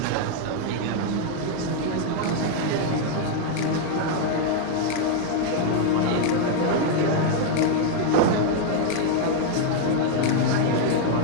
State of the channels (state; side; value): different; both; correlation 0.00